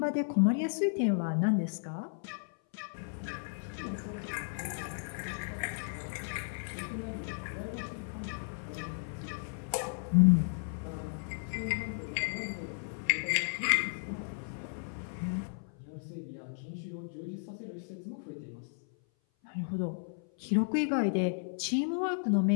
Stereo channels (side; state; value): right; silent; 55 dB below the other